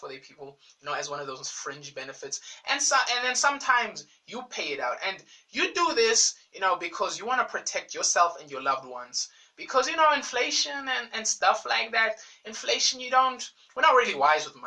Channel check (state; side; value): identical; both; correlation 1.00